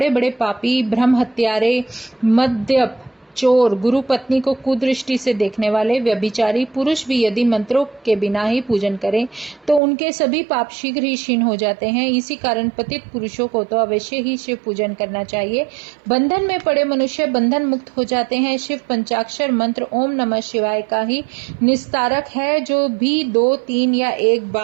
बड़े पापी, ब्रह्म हत्यारे, मद्यप, चोर, गुरु पत्नी को कुदृष्टि से देखने वाले, व्यभिचारी पुरुष भी यदि मंत्रों के बिना ही पूजन करें तो उनके सभी पाप शीघ्र ही क्षीण हो जाते हैं। इसी कारण पतित पुरुषों को तो अवश्य ही शिव पूजन करना चाहिए। बंधन में पड़े मनुष्य बंधन मुक्त हो जाते हैं। शिव पंचाक्षर मंत्र ओम नमः शिवाय का ही निस्तारक है। जो भी 2, 3 या 1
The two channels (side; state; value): left; drops out; at 9.8 s